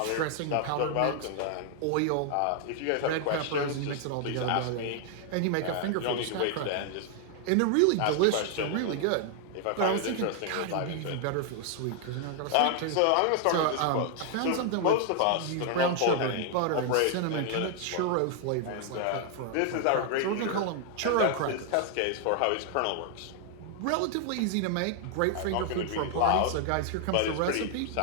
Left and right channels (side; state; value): both; different; correlation 0.00